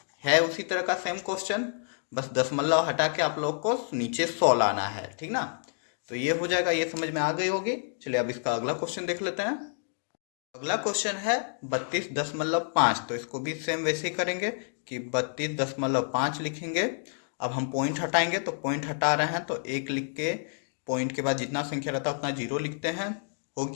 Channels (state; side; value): silent; right; digital silence